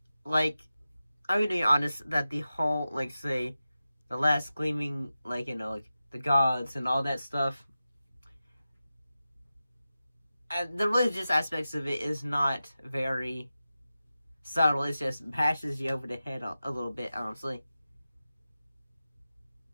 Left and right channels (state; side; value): inverted; both; correlation -0.93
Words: that the whole, say, the last Gleaming, the gods and all that stuff, the religious aspects of it is not very subtle. It just bashes you over the head a little bit, honestly.